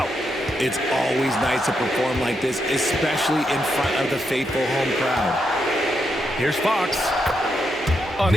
It's always nice to perform like this, especially in front of the faithful home crowd. Here's Fox. An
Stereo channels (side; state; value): both; normal; correlation 0.82